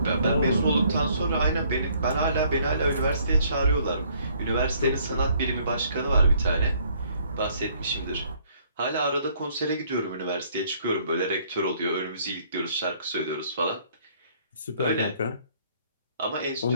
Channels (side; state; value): both; inverted; correlation -0.63